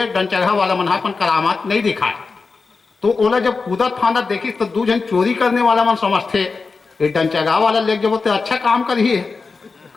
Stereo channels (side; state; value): right; quieter; 4.4 dB